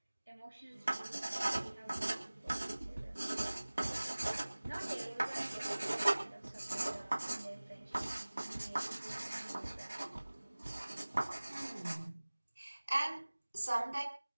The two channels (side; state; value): both; inverted; correlation -1.00